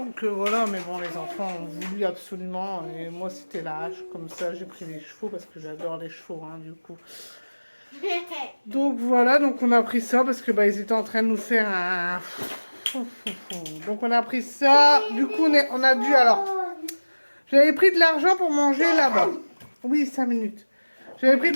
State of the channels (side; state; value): both; inverted; correlation -1.00